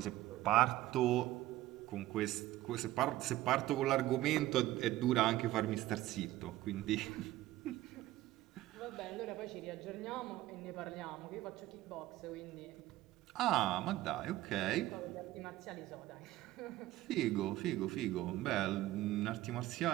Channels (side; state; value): left; quieter; 16.0 dB